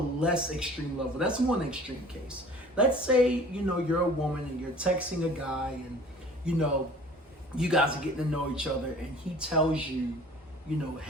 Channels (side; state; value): both; normal; correlation 0.47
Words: extreme level. That's one extreme case. Let's say, you're a woman and you're texting a guy and, you guys are getting to know each other, and he tells you,